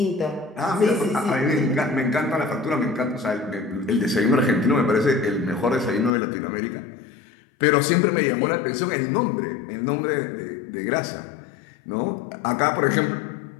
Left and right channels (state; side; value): drops out; right; at 6.1 s